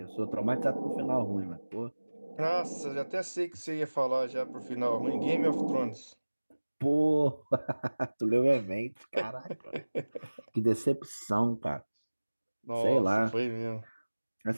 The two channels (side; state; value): both; inverted; correlation -1.00